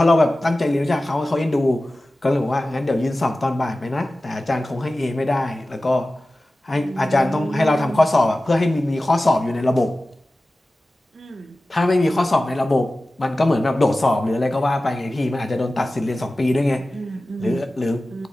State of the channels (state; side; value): normal; both; correlation 0.96